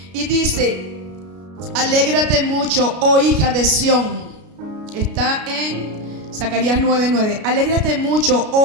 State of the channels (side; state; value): left; late; 33 ms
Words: Y dice, alégrate mucho, oh hija de Sión. Está en Zacarías 9:9. Alégrate mucho,